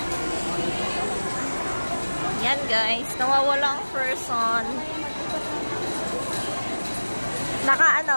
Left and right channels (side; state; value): both; inverted; correlation -1.00